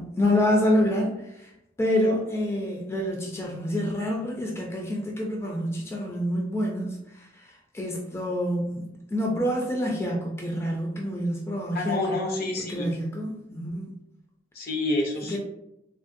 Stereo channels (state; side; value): normal; both; correlation 0.68